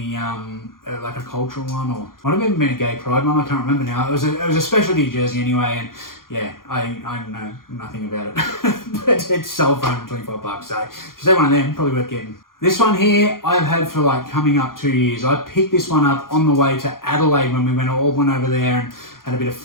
like a cultural one, or might have even been a gay pride one. I can't remember now. It was a specialty jersey anyway, and yeah, I know nothing about it. But it's sold for $125. So if you say one of them, probably worth getting. This one here, I've had for like coming up 2 years. I picked this one up on the way to Adelaide when we all went over there and had a bit of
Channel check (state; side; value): late; right; 0.91 ms